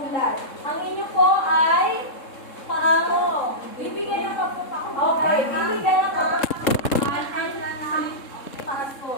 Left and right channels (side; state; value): right; late; 3.7 ms